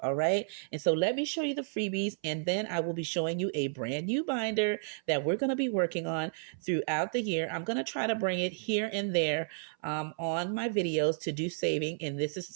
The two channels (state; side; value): silent; left; 57 dB below the other